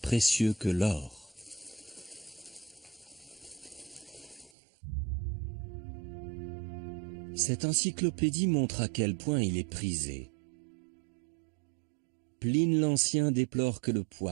que l'or. Cette encyclopédie montre à quel point il est prisé. Pline l'Ancien déplore que le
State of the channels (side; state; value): left; drops out; at 4.5 s